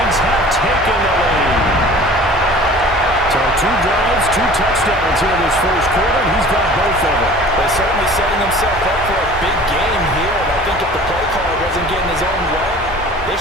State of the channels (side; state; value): both; normal; correlation 0.45